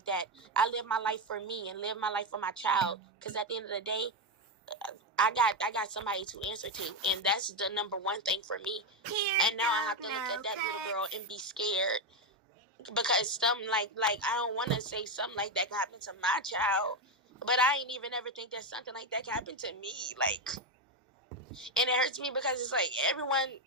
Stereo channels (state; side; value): normal; both; correlation 0.09